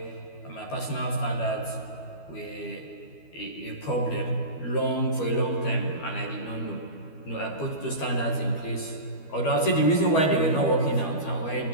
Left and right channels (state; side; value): late; right; 12 ms